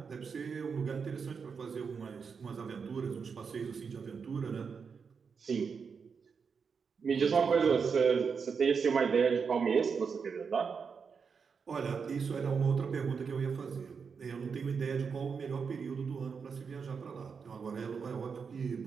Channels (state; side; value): quieter; left; 5.8 dB